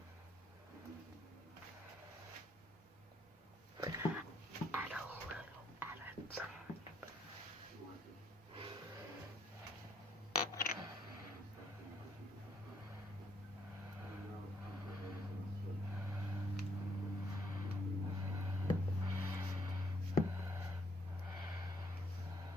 Add a little at a time.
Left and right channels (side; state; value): both; normal; correlation 0.70